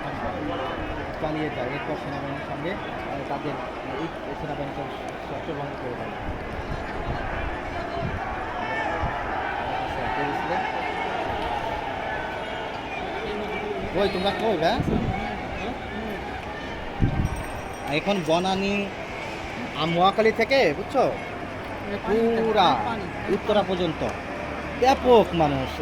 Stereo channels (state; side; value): identical; both; correlation 1.00